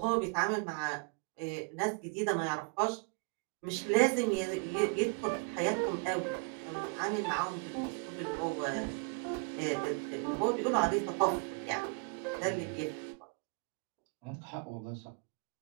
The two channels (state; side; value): quieter; left; 33.3 dB